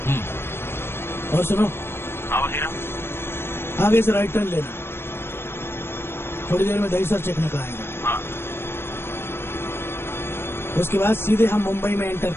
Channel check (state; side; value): late; right; 0.11 ms